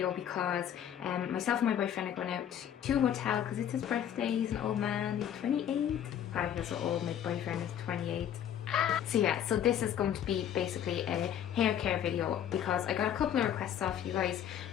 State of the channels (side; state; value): right; quieter; 9.9 dB